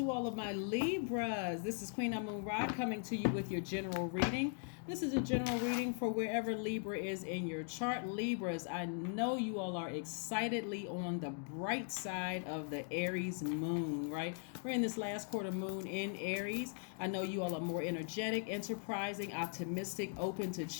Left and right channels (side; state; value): right; silent; 51 dB below the other